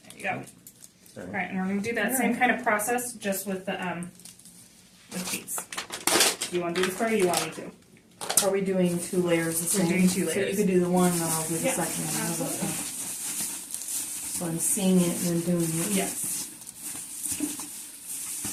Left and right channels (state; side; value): identical; both; correlation 1.00